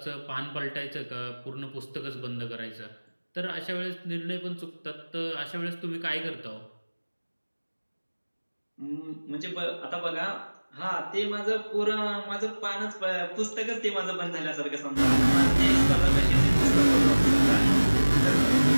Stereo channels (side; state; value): both; inverted; correlation -1.00